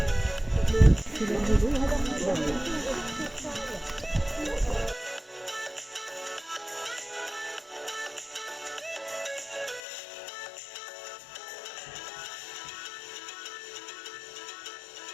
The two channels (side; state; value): right; drops out; at 9.8 s